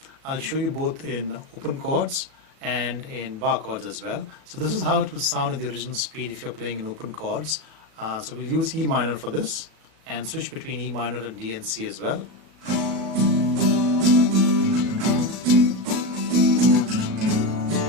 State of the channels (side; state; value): left; late; 36 ms